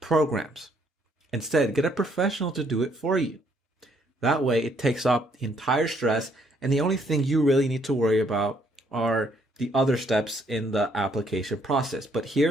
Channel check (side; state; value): both; normal; correlation 0.68